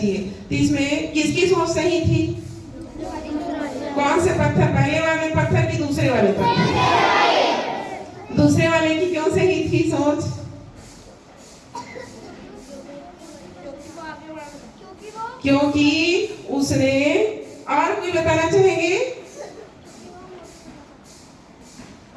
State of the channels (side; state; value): both; identical; correlation 1.00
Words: तो इसमें किसकी सोच सही थी, कौन से पत्थर, पहले वाले पत्थर की दूसरे वाले पत्थर? दूसरे वाले की क्यों सही थी सोच? क्योंकि उसने, और कोई बताना चाहेंगे?